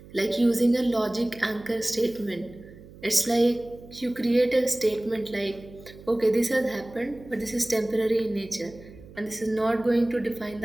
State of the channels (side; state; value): right; noise; hum, 19 dB below the sound